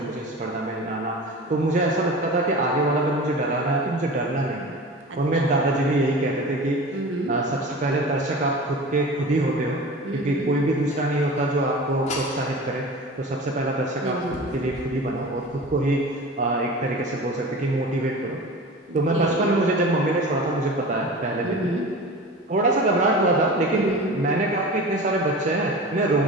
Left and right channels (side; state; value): both; normal; correlation 0.35